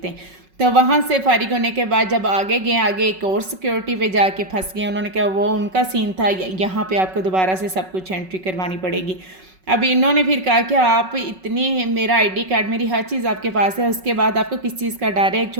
तो वहाँ से फारिग होने के बाद जब आगे गए, आगे एक और सिक्योरिटी पे जाके फंस गए। उन्होंने कहा वो उनका सीन था, यहाँ पे आपको दोबारा से सब कुछ एंट्री करवानी पड़ेगी। अब इन्होंने फिर कहा कि आप इतनी, मेरा आईडी कार्ड मेरी हर चीज़ आपके पास है, उसके बाद आपको किस चीज़ का डर है, एक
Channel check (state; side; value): late; left; 5.4 ms